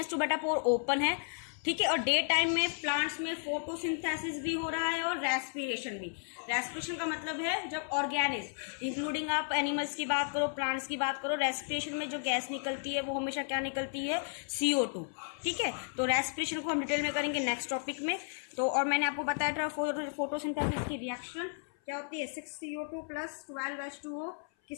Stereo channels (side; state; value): right; silent; 55 dB below the other